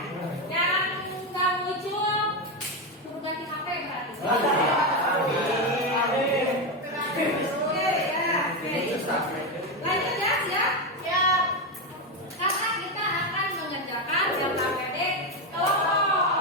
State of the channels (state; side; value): normal; both; correlation 0.10